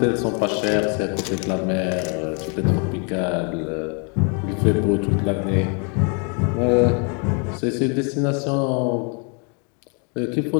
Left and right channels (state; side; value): quieter; right; 36.9 dB